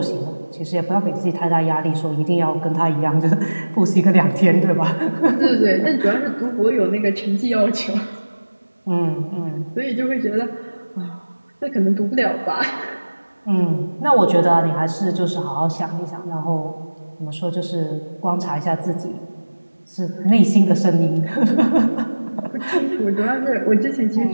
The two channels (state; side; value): inverted; both; correlation -1.00